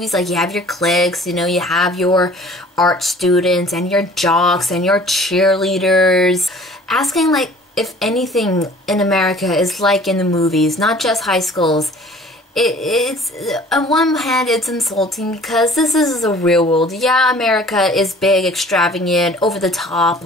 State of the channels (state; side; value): normal; both; correlation 0.50